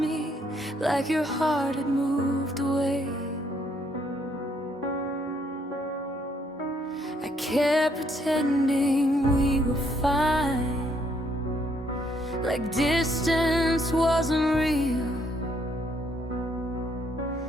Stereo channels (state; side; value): normal; both; correlation 0.70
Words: like your heart had moved away. I kept pretending we were fine, like distance wasn't real.